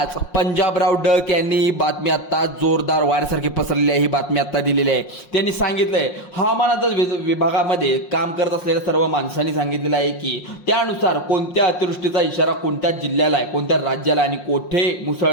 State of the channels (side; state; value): right; late; 5.6 ms